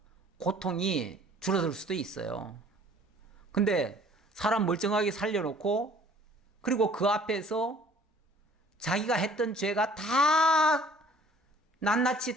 고통이 줄어들 수도 있어요. 근데 사람 멀쩡하게 살려놓고 그리고 그 앞에서 자기가 했던 죄가 다 낱낱이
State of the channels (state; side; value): normal; both; correlation 0.54